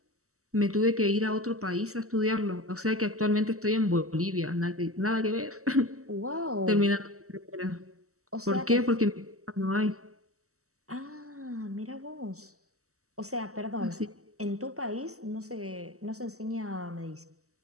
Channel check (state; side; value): late; left; 0.64 ms